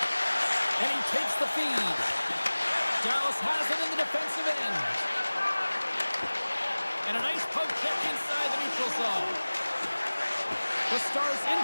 And he takes the feed. Dallas has it in the defensive end. And a nice poke check inside the neutral zone. The Stars in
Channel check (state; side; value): inverted; both; correlation -1.00